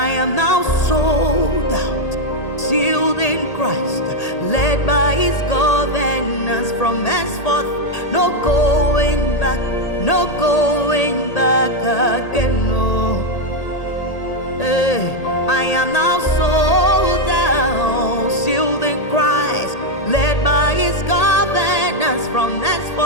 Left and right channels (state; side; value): late; right; 1.8 ms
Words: am now sold out, sealed in Christ, led by His governance from henceforth. No going back, no going back again. No, hey, I am now sold out, sealed in Christ, led by His governance from